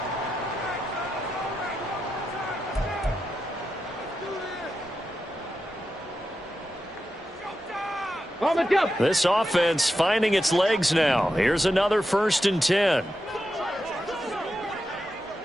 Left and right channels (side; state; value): both; normal; correlation 0.88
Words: This offense finding its legs now. Here's another 1st and 10.